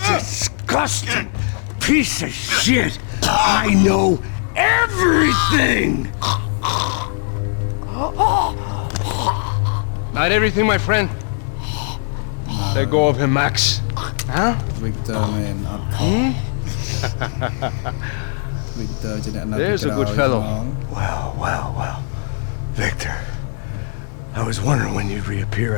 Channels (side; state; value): right; silent; 66 dB below the other